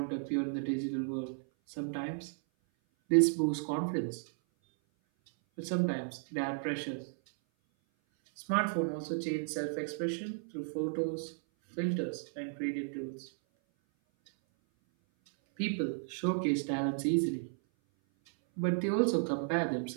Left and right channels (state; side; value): silent; left; 55 dB below the other